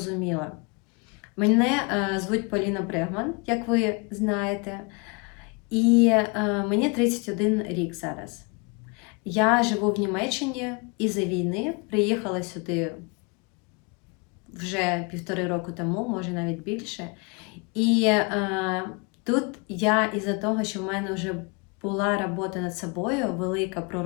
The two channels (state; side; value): quieter; right; 30.9 dB